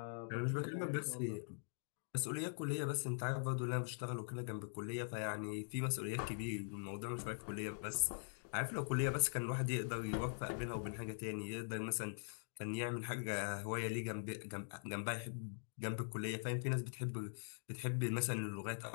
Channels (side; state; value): right; silent; digital silence